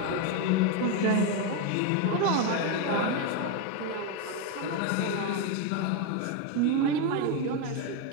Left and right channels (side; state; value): both; different; correlation 0.03